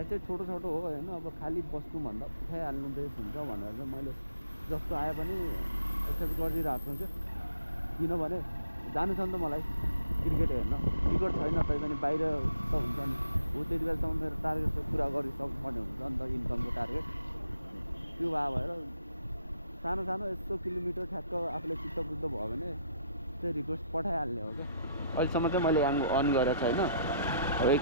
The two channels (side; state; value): both; inverted; correlation -0.71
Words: चाहिँ छोटो छोटो हो होइन, अब खालि बस्नुभन्दा उठाइहाल्नु बेस हुन्छ भनेर चाहिँ मैले जस्तो आए पनि एक्सेप्ट गरिदिइरहेको छु। किनभने जानु छ नि त मलाई क्रिकेट हेर्न, टिकट छैन तै पनि बाहिर त हुन्छ नि, हो त्यति बेलासम्म मेरो टार्गेट चाहिँ पुरा गरिसक्नुपर्ने हुन्छ नि त, इन्कमको टार्गेट। त्यो भएर सानो सानो यस्तो किलोमिटर ठ्याक्क आफूले चित्त बुझ्दो भयो भने चाहिँ रिक्वेस्ट पठाइहाल्ने हो क्या। अहिलेसम्म चाहिँ मैले याङ्गो अन गरेको छैन, अब